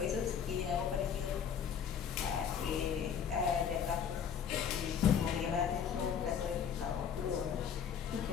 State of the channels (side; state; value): right; quieter; 7.7 dB